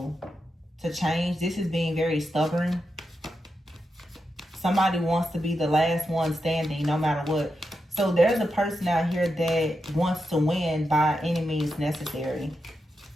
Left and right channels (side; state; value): both; normal; correlation 0.87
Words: to change. This is being very stubborn. Somebody wants to be the last one standing no matter what. So there's a person out here that wants to win by any means necessary.